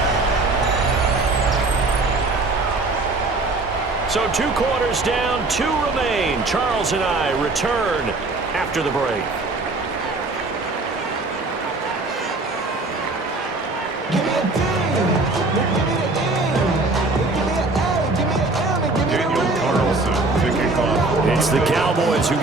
So 2 quarters down, 2 remain. Charles and I return after the break. It's the Cowboys who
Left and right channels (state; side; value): quieter; left; 3.3 dB